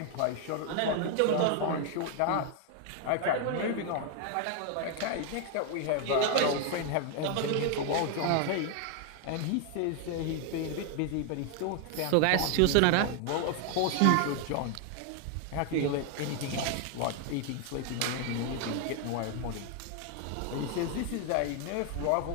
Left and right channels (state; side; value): different; both; correlation 0.00